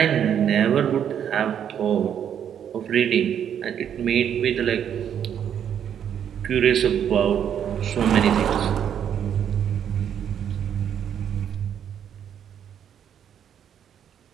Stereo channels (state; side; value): quieter; left; 9.0 dB